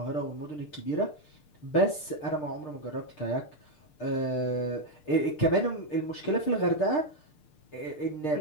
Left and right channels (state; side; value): late; right; 6.6 ms